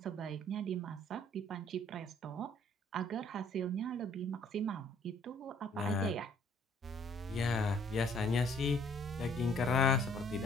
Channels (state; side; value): normal; both; correlation 0.60